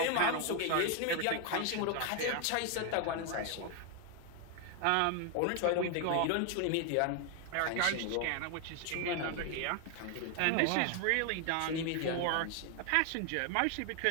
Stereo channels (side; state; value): both; different; correlation 0.01